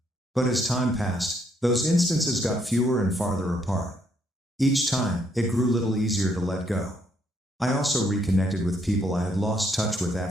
But as time passed, those instances got fewer and farther apart. Each time, it grew a little easier to let go. I also reconnected with people I had lost touch with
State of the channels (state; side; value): normal; both; correlation 0.71